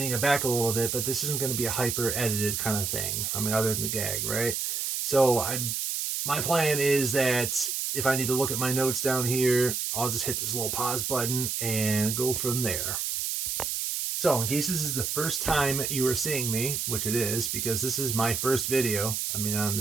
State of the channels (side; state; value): right; noise; hiss, 1 dB below the sound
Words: it back a little bit, but this isn't going to be a hyper edited kind of thing. I mean, other than the gag, right? So my plan is that if I need to look at my notes down here, I'll just hit this little pause button and go from there. So in case this is the first time you are seeing me, which it is, because this is my first video, on